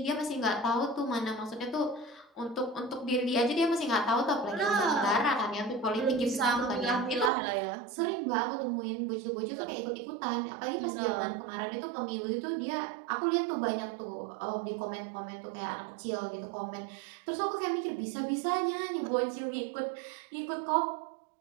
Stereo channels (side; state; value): left; drops out; at 7.3 s